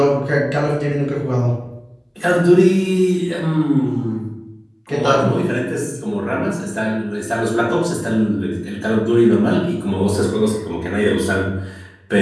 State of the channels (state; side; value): identical; both; correlation 1.00